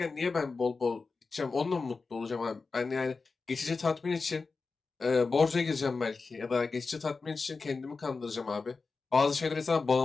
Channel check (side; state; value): right; quieter; 4.3 dB